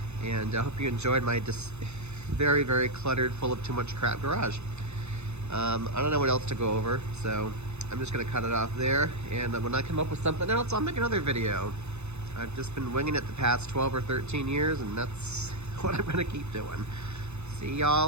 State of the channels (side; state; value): left; late; 0.81 ms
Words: And I hope you enjoyed my very, very cluttered, full of too much crap garage. I don't know what else to go over, so I'm just gonna cut it off there. And when I come up with something else, I'll make another video. I've just been winging it the past 12 or 13 years, and that's what I'm gonna keep doing. See